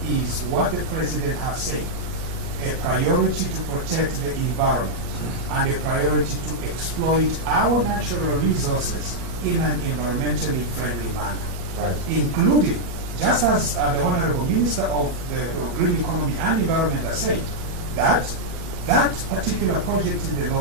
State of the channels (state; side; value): late; left; 17 ms